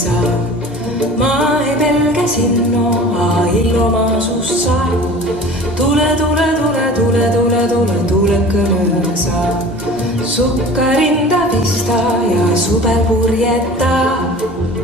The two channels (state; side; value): normal; both; correlation 0.41